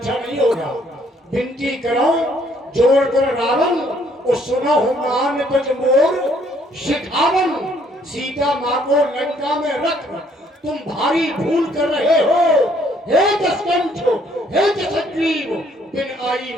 नहीं होगा। विनती करो जोड़ कर रावण, और सुनो हो मान तुझ मोर शिखावन, सीता माँ को लंका में रख तुम भारी भूल कर रहे हो। हे दशकंठ, हे दशग्रीव, बिन आई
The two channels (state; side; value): normal; both; correlation 0.65